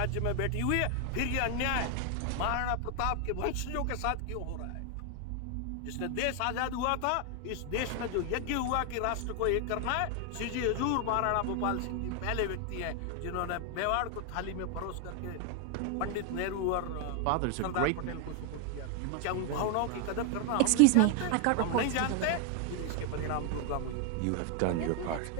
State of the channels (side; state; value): both; different; correlation 0.01